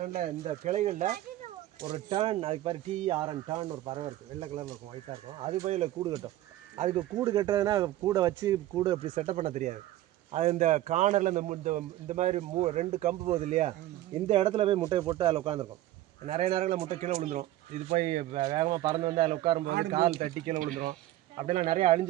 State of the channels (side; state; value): left; quieter; 14.8 dB